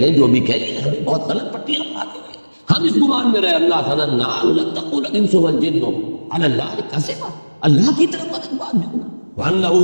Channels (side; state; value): both; inverted; correlation -1.00